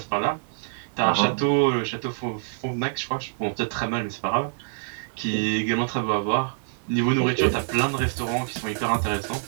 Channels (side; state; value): left; silent; 55 dB below the other